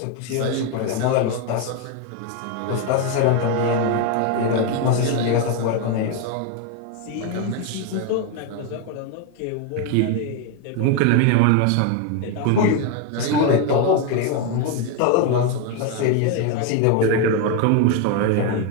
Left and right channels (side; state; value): both; different; correlation 0.01